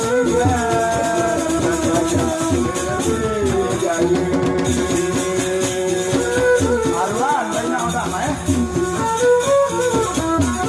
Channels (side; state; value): both; identical; correlation 1.00